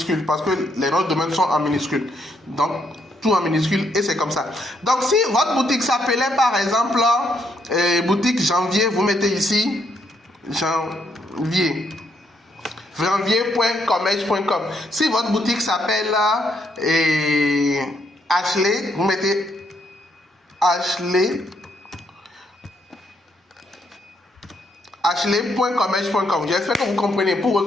parce que les noms de domaine sont en minuscule. Donc tout en minuscule et c'est comme ça. Donc si votre boutique s'appelait par exemple boutique janvier, vous mettez ici janvier.commerce.com. Si votre boutique s'appelle Ashley, vous mettez Ashley.commerce.com. J'espère que vous comprenez pour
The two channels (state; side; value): normal; both; correlation 0.74